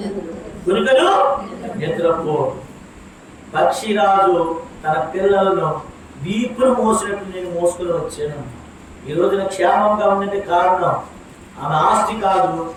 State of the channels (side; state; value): both; identical; correlation 1.00